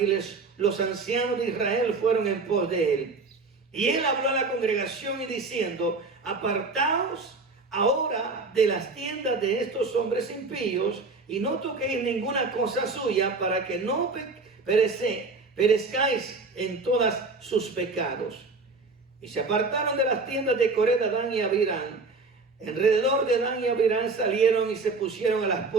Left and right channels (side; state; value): left; quieter; 3.8 dB